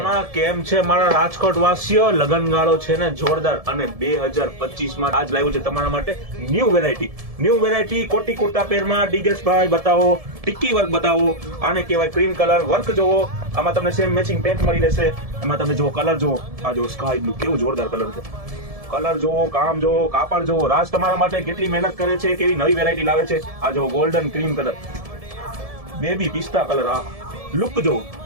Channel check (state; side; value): late; left; 1.7 ms